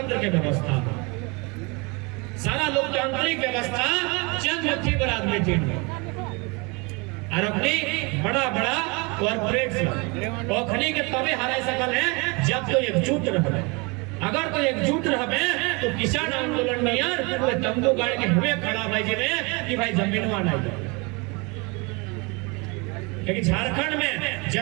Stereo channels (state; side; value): quieter; left; 28.8 dB